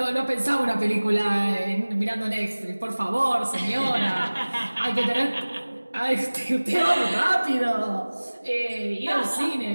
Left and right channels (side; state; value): both; inverted; correlation -1.00